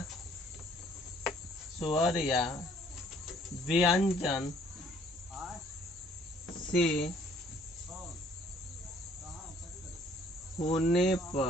व्यंजन से होने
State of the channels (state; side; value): normal; both; correlation 0.60